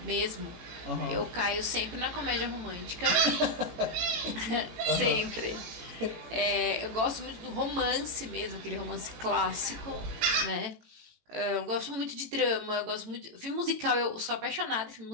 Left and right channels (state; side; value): late; left; 18 ms